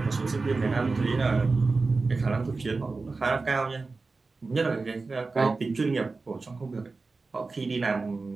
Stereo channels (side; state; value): left; quieter; 3.9 dB